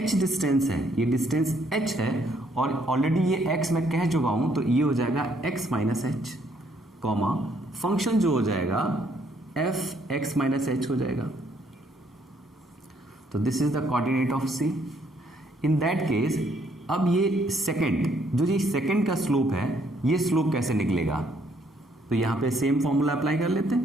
डिस्टेंस है, ये डिस्टेंस h है और ऑलरेडी ये x मैं कह चुका हूं, तो ये हो जाएगा x minus H, comma function जो हो जाएगा f x माइनस एच हो जाएगा। तो this is the coordinate of c। In that case अब ये सेकंड, जो ये सेकंड का स्लोप है, ये स्लोप कैसे निकलेगा, तो यहां पे सेम फॉर्मूला अप्लाई कर लेते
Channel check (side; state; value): both; normal; correlation 0.68